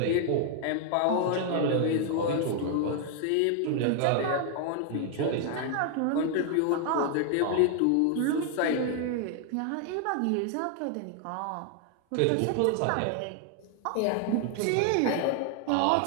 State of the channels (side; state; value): both; different; correlation 0.00